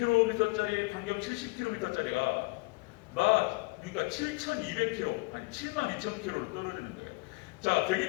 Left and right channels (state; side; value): quieter; right; 27.1 dB